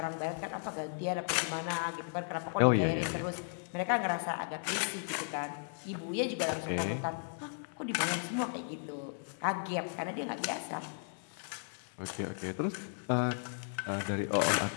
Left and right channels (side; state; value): right; silent; 54 dB below the other